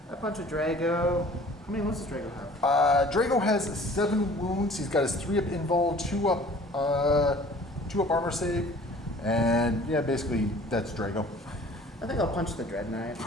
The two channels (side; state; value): both; normal; correlation 0.49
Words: I punch a Drago. How many wounds does Drago have? Drago has 7 wounds. He's got his 3-up invul, 2 up armor save, and yeah, basically that's Drago. I think I'll punch the Dread Knight.